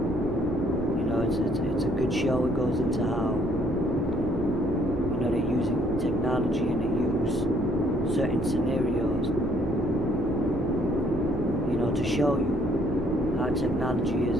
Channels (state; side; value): normal; both; correlation 0.65